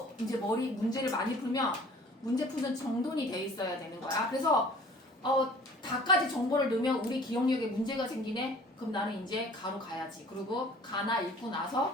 이제 머리 문제를 많이 풀면 문제 푸는 정돈이 돼 있어야 되는 거야. 그래서 다까지 정보를 넣으면 우리 기억력에 문제가 생기네? 그럼 나는 이제 가로 가야지. 그리고 가나 읽고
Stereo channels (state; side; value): normal; both; correlation 0.49